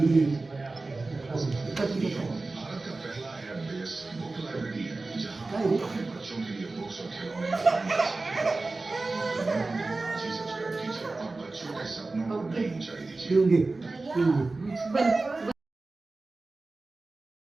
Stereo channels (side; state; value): left; quieter; 3.4 dB